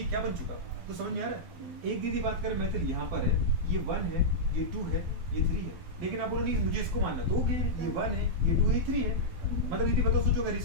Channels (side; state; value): left; late; 12 ms